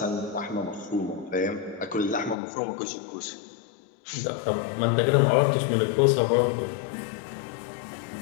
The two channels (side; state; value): right; drops out; at 2.4 s